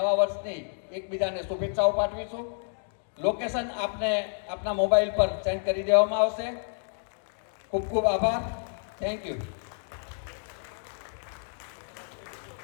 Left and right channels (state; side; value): silent; right; digital silence